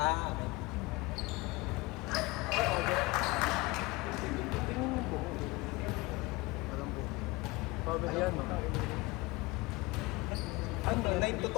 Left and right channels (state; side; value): quieter; right; 22.9 dB